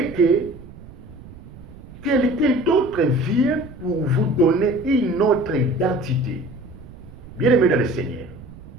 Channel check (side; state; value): right; noise; rumble, 18 dB below the sound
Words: que quelqu'un d'autre vient pour vous donner une autre identité. Bien aimé dans le Seigneur,